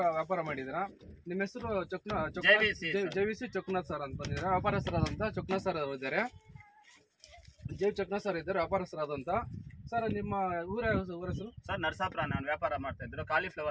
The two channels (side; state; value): both; identical; correlation 1.00